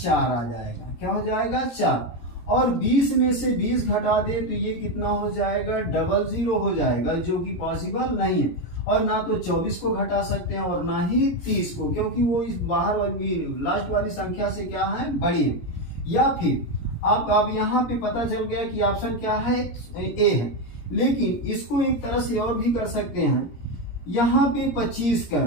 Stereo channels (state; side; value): late; right; 17 ms